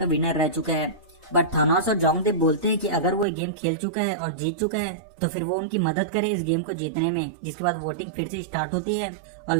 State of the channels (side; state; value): left; drops out; at 3.2 s